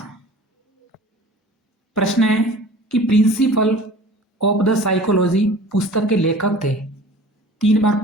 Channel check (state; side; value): normal; both; correlation 0.43